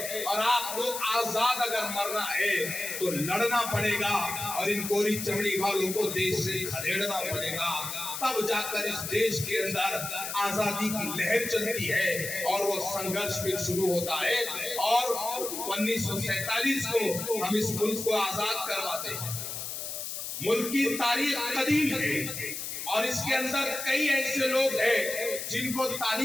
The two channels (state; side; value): noise; left; hiss, 6 dB below the sound